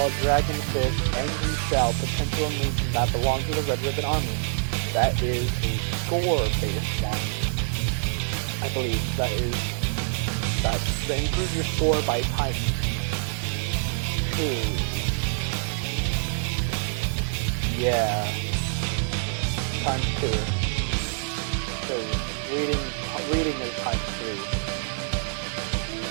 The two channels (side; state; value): left; silent; digital silence